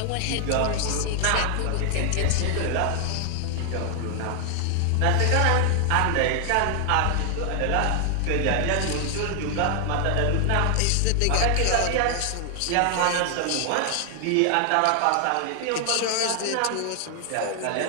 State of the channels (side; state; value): both; different; correlation 0.00